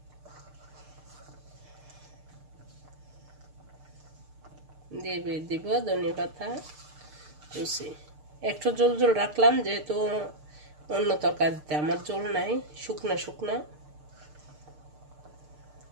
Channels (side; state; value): left; late; 6.6 ms